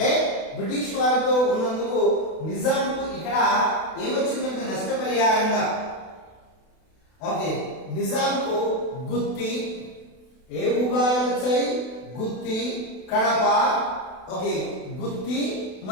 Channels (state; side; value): late; right; 32 ms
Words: బ్రిటిష్ వారితో ఉన్నందుకు నిజాంకు ఇక్కడ ఏమొచ్చిందంటే నష్టపరిహారంగా ఓకే నిజాంకు గుత్తి ఏ భూభాగాలు వచ్చాయి? గుత్తి, కడప ఓకే గుత్తి